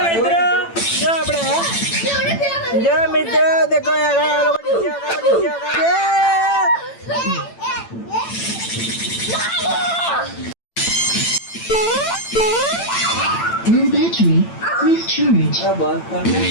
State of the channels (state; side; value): late; right; 8.9 ms